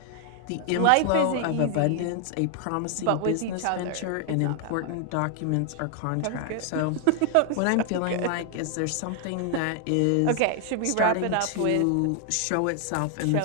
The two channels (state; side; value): different; both; correlation 0.00